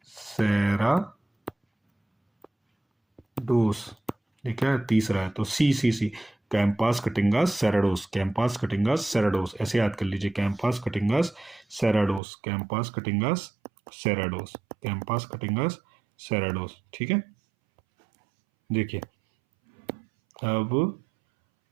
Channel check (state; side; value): drops out; left; at 12.2 s